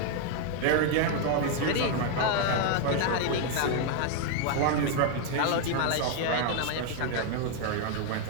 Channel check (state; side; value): different; both; correlation 0.00